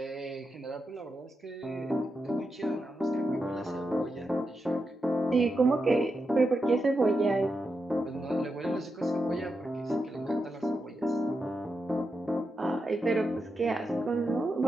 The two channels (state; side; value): normal; both; correlation 0.87